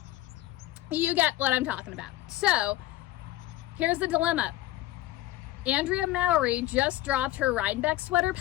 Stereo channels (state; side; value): quieter; right; 15.9 dB